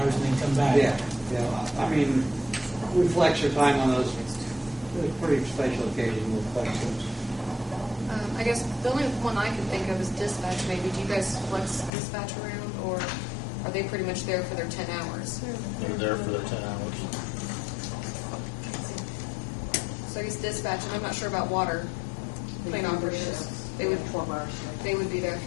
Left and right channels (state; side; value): drops out; right; at 11.9 s